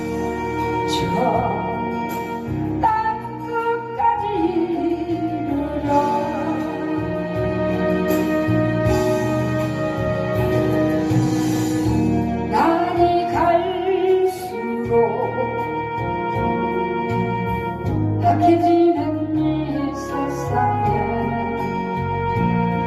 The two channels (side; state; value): both; identical; correlation 1.00